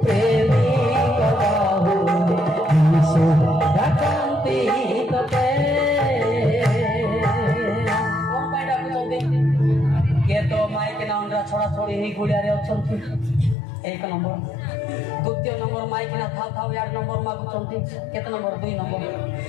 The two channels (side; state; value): right; drops out; at 13.6 s